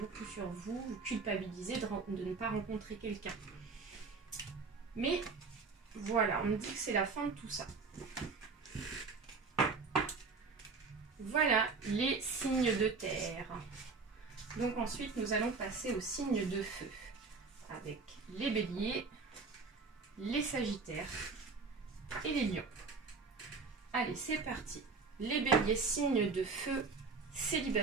culpabilisez de ne pas rencontrer quelqu'un. Mais voilà, on me dit que c'est la fin de tout ça. Voilà les signes de terre. Donc ensuite, nous allons passer aux signes de feu. Avec les béliers, les sagittaires et les lions. Allez, c'est parti. Les béliers, signes de feu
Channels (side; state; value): left; quieter; 4.6 dB